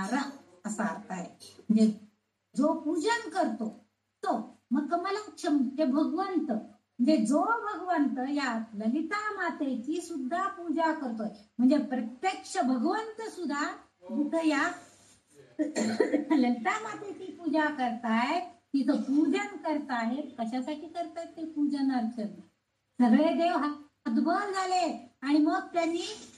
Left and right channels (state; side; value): identical; both; correlation 1.00